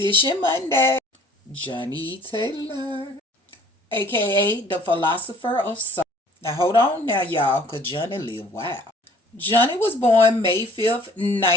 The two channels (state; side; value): normal; both; correlation 0.54